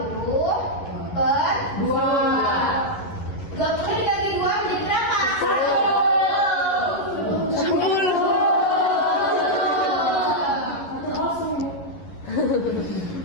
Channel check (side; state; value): right; late; 11 ms